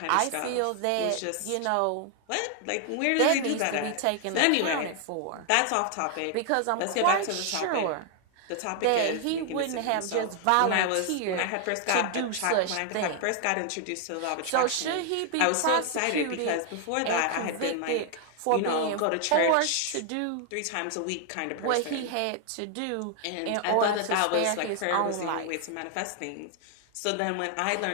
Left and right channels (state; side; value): different; both; correlation 0.00